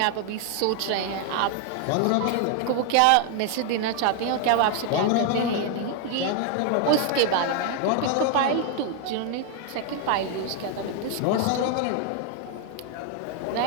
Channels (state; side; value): different; both; correlation 0.00